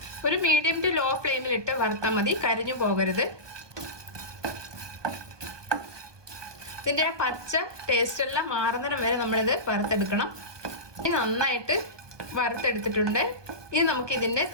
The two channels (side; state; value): left; late; 1.2 ms